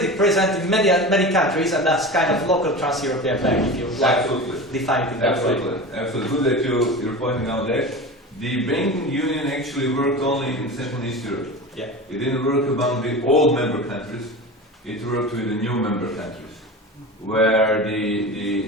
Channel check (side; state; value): both; normal; correlation 0.30